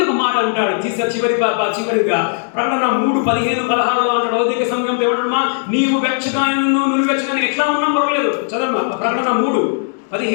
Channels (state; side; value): silent; right; digital silence